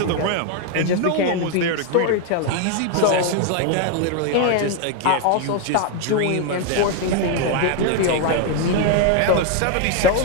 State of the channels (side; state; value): both; different; correlation 0.01